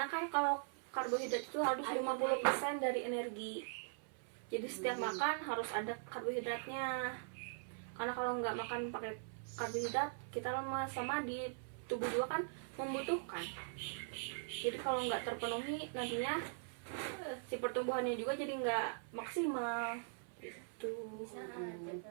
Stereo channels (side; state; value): left; silent; 50 dB below the other